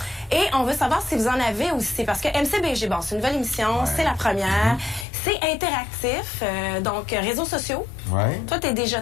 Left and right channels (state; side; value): drops out; right; at 5.1 s